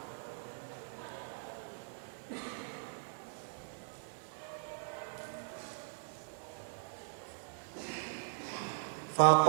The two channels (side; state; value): left; silent; digital silence